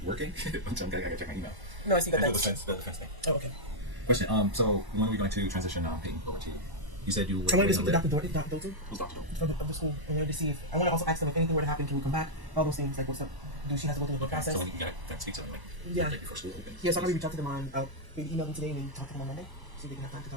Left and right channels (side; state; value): left; late; 1.0 ms